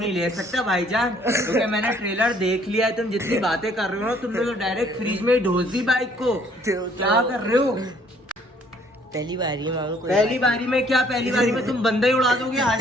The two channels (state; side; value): normal; both; correlation 0.61